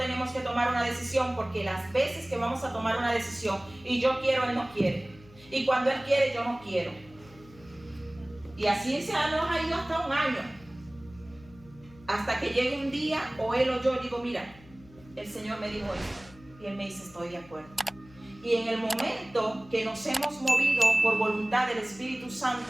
que tomar una decisión, porque las veces que vamos a tomar una decisión y yo quiero, Él no quiere, y cuando Él quiere, yo no quiero, y así se nos ha ido hasta un año, hasta que llegue un día o Él o yo digo, mira, el Señor me dijo esto, y Él me dice, estoy de acuerdo. Y en el momento que nos hemos movido por voluntad del Espíritu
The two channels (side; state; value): left; noise; hum, 23 dB below the sound